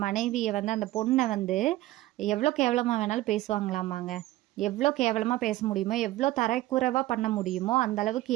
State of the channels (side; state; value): left; quieter; 16.7 dB